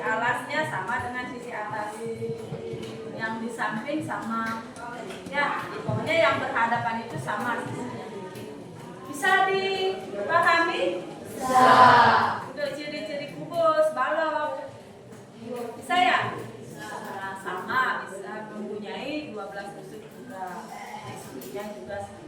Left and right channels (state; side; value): identical; both; correlation 1.00